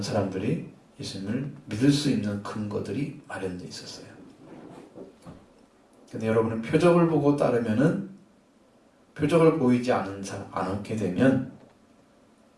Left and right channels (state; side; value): identical; both; correlation 1.00